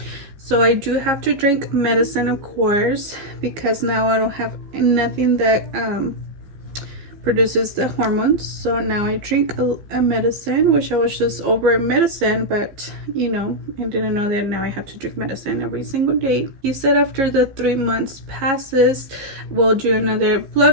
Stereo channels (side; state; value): left; late; 15 ms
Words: So I do have to drink medicine, of course, because now I don't have nothing that produces the hormones. So now I drink a medicine, which I was just over medicine, but you know, I didn't know that now I have to drink medicine every single day. He said after the 3 months passes, we'll do another